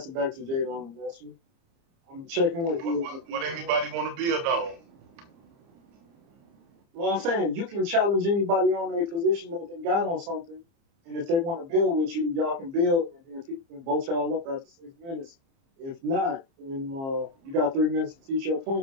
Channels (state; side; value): late; left; 30 ms